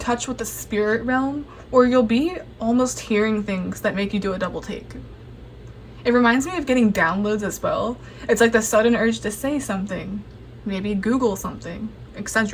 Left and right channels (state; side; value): identical; both; correlation 1.00